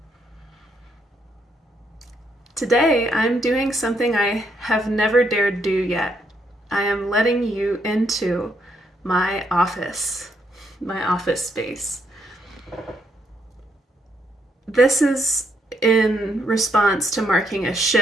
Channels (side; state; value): both; normal; correlation 0.75